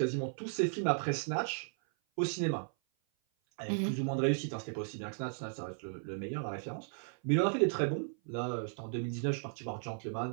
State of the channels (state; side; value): silent; left; 54 dB below the other